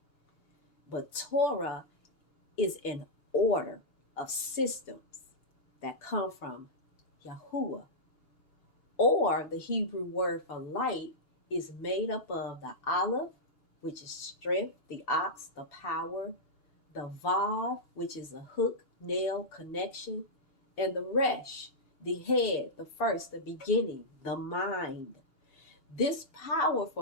But Torah is an order of systems that come from Yahuwah. Or the Hebrew word for light is made up of the Aleph, which is strength, the ox, the power, the Vav, which is a hook, nail, connection, and the Resh, the head, the first, the beginning, the mind. This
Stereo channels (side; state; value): right; late; 2.8 ms